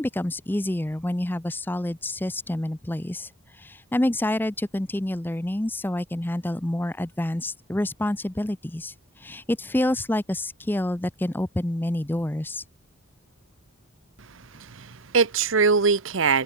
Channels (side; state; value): both; normal; correlation 0.46